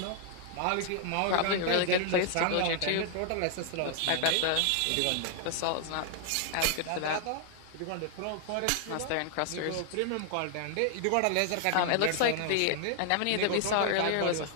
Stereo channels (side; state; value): both; different; correlation 0.00